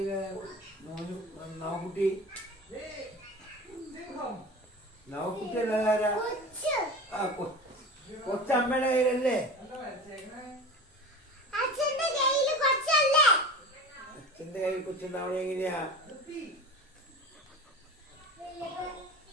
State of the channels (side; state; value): both; normal; correlation 0.33